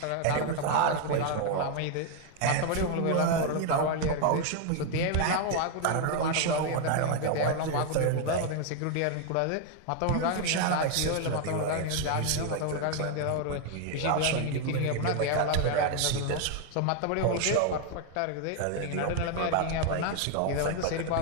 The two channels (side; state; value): both; different; correlation 0.01